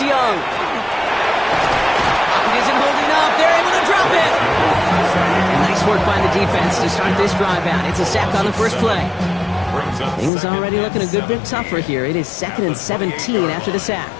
Pocket isn't holding up. They're able to drop it. And nice work by the defense to start this drive out. It's a sack on the first play. Things already looking a good bit tougher here. It is 2nd and 17 after the sack.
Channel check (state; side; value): drops out; right; at 10.3 s